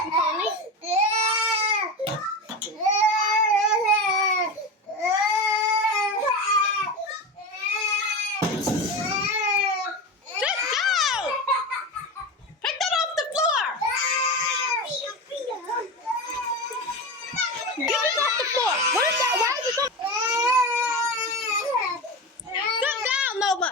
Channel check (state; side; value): normal; both; correlation 0.22